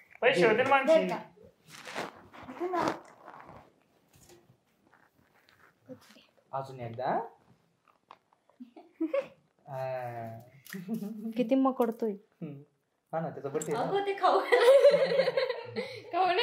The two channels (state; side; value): identical; both; correlation 1.00